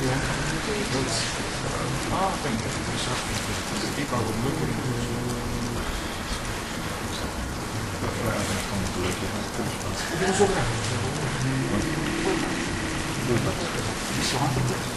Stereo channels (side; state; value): both; identical; correlation 1.00